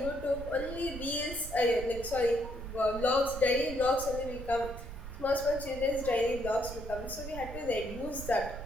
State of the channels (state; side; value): noise; right; rumble, 10 dB below the sound